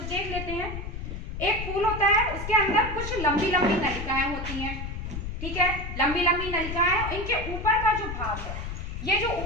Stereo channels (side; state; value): left; noise; rumble, 6 dB below the sound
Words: देख लेते हैं। एक फूल होता है, उसके अंदर कुछ लंबी लंबी नलिकाएं होती हैं, ठीक है। लंबी लंबी नलिकाएं, इनके ऊपर का जो भाग है, ये जो